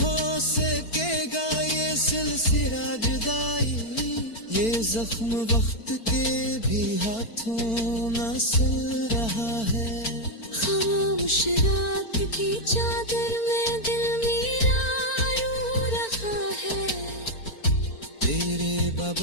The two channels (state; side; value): late; right; 4.4 ms